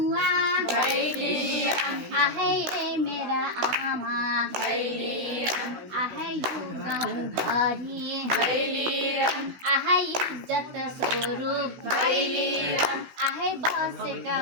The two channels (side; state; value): left; late; 16 ms